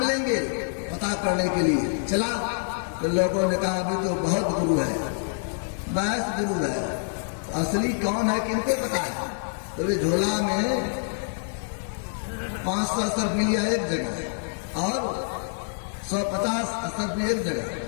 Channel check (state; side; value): silent; right; digital silence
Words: पता करने के लिए चला। तो लोगों ने कहा अभी तो बहुत गुरु है, 22 गुरु है, असली कौन है किनको पता है। तो वे झोला में 500 सर्फी लिया एक जगह और 150 सर्फी एक जगह,